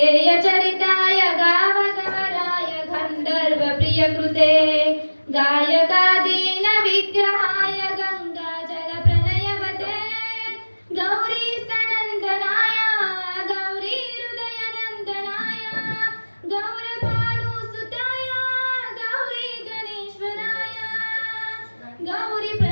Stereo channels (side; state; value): both; inverted; correlation -1.00